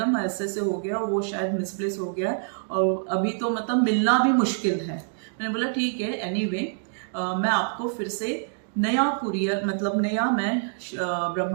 ऐसे ऐसे हो गया, वो शायद मिसप्लेस हो गया है और अभी तो मतलब मिलना भी मुश्किल है। मैंने बोला ठीक है एनीवे, मैं आपको फिर से नया कुरियर मतलब नया मैं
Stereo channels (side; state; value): left; silent; digital silence